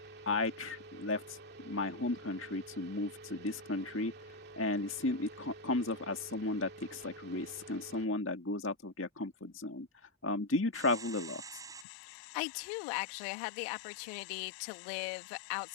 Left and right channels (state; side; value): drops out; right; at 11.9 s